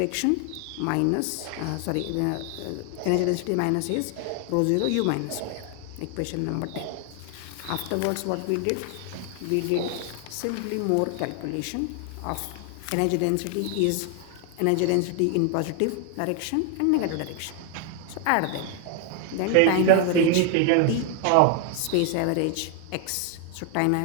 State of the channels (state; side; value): different; both; correlation 0.00